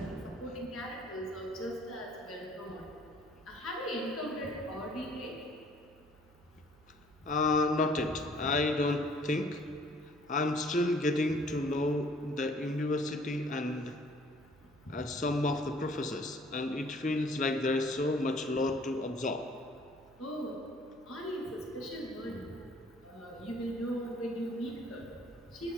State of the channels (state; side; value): noise; right; hum, 27 dB below the sound